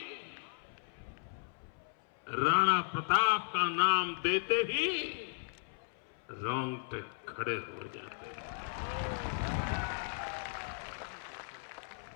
राणा प्रताप का नाम देते ही रोंगटे खड़े हो जाते हैं।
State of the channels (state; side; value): silent; right; 54 dB below the other